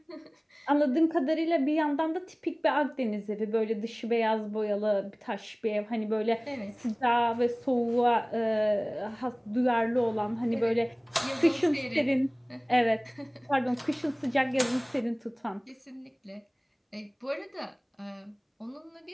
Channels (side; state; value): both; identical; correlation 1.00